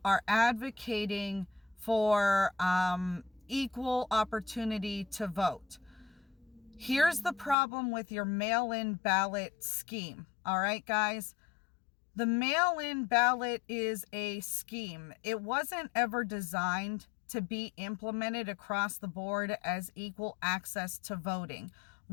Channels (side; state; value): right; drops out; at 7.6 s